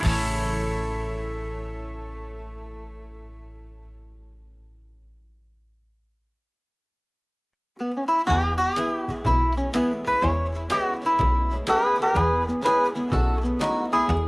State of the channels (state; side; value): identical; both; correlation 1.00